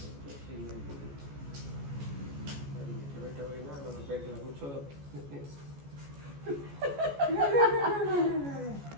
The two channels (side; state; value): left; late; 14 ms